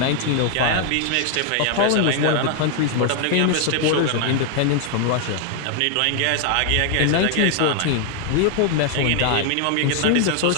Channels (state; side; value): different; both; correlation 0.00